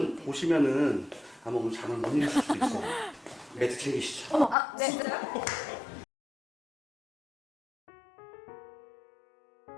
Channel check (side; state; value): right; drops out; at 4.5 s